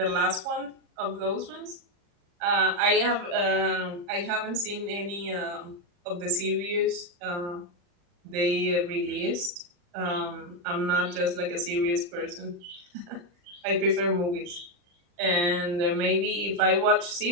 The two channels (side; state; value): left; late; 40 ms